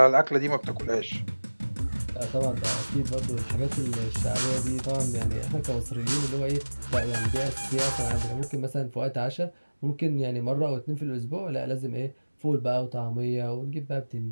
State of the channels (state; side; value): inverted; both; correlation -1.00